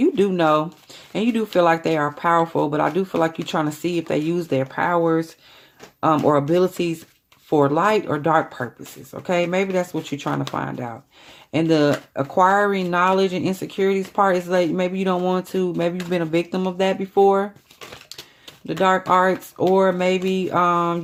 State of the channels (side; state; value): both; identical; correlation 1.00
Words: do know, and you do feel like they are powerful, but I do feel like you're trying to see if they use their powers or abilities for light or dark purposes. Okay, maybe that's what you're trying to find out. And the acquiring knowledge and insecurities part is like maybe you don't want to, maybe you've been a victim of that before. The dark arts, or maybe